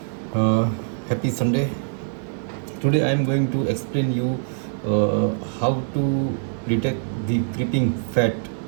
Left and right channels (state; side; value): silent; left; digital silence